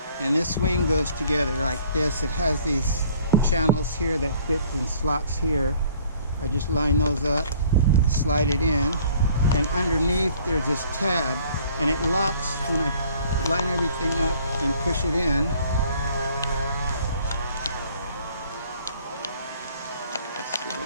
And this wing goes together like this. It has these channels here that fit in slots here. I just line those up, slide it in, and underneath there's this tab, and it locks when I line everything up and push it in. Let's see,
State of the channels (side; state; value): both; inverted; correlation -0.56